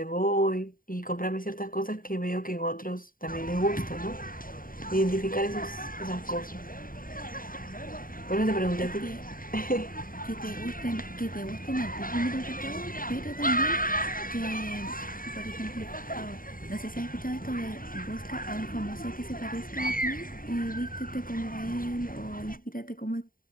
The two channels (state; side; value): late; right; 0.41 ms